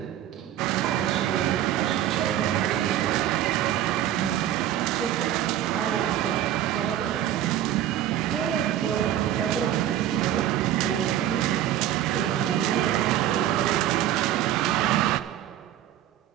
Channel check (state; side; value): quieter; left; 11.9 dB